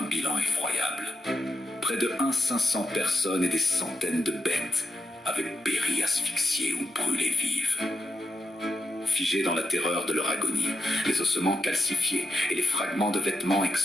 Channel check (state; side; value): normal; both; correlation 0.86